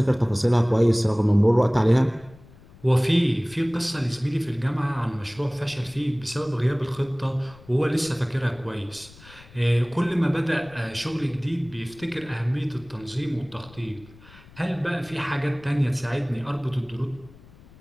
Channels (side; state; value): left; noise; rumble, 23 dB below the sound